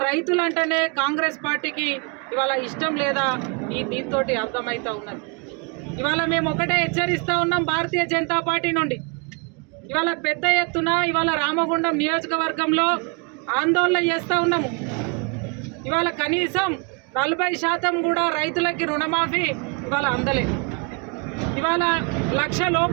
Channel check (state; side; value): quieter; left; 33.0 dB